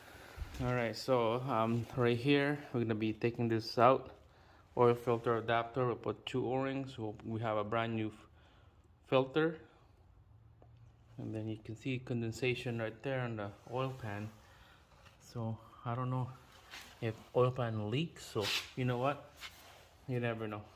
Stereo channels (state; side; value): identical; both; correlation 1.00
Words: Alright, so right here we're gonna be taking this out. Oil filter adapter, we'll put 2 O-rings. We have a brand new filter. And then you can see condensation right there on the oil pan. So I don't know if oil pan leaks, so you know what? You never know.